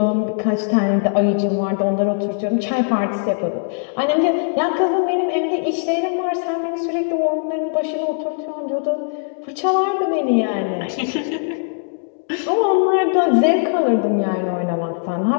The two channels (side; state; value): right; silent; digital silence